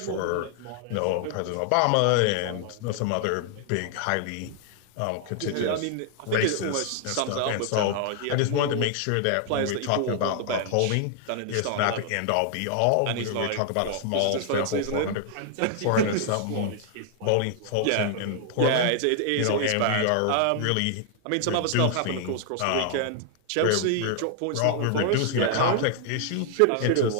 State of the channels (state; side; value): different; both; correlation 0.00